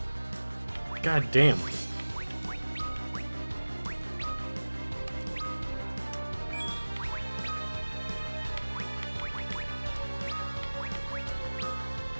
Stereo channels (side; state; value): both; inverted; correlation -1.00